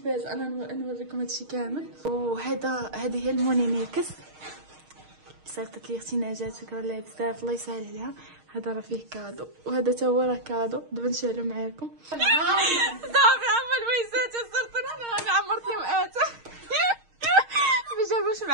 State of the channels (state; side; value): late; left; 6.4 ms